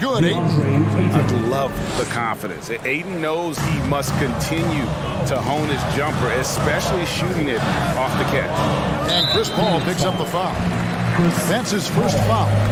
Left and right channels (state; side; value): identical; both; correlation 1.00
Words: I love the confidence. Ayton knows he must continue to hone his jumper, especially shooting it off the catch. And Chris Paul picks up the foul. That's his first foul.